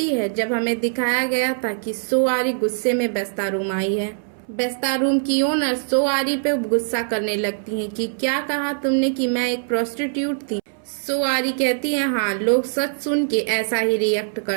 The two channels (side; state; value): left; silent; 64 dB below the other